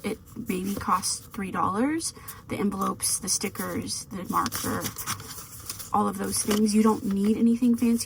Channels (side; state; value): both; identical; correlation 1.00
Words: It maybe costs $3. The envelopes, the stickers, the marker, all of those things. You don't need anything